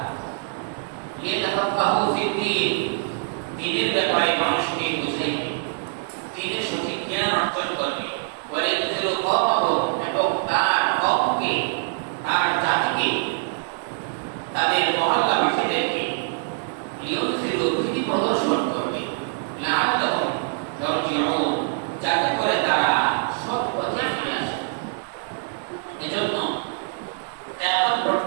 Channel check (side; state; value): left; silent; digital silence